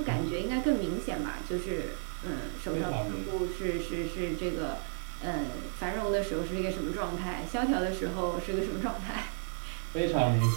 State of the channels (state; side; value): silent; left; digital silence